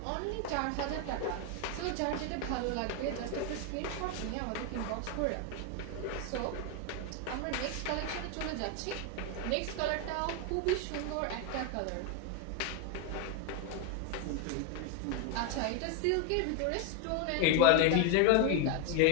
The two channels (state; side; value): different; both; correlation 0.01